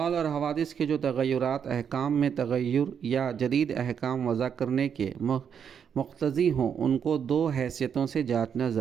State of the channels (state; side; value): quieter; left; 7.6 dB